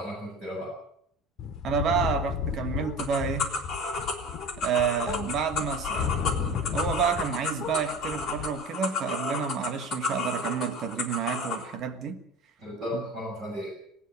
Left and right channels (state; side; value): normal; both; correlation 0.34